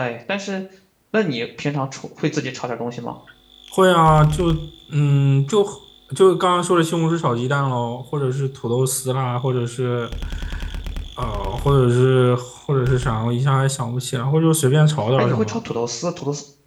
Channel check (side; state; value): both; identical; correlation 1.00